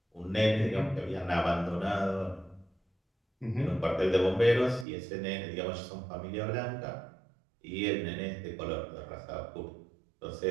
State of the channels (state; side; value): drops out; left; at 4.9 s